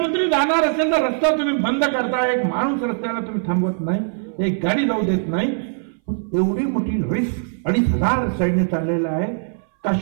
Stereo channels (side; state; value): left; silent; 60 dB below the other